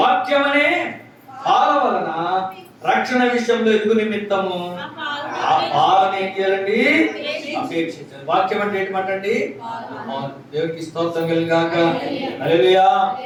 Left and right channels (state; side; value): identical; both; correlation 1.00